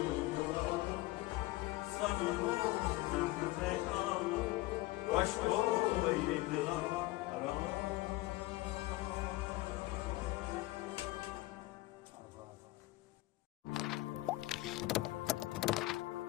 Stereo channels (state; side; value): quieter; right; 19.5 dB